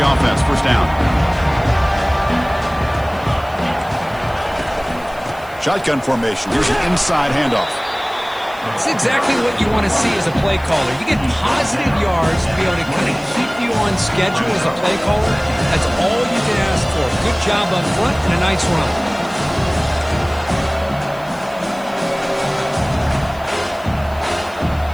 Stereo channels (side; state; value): left; noise; hiss, 25 dB below the sound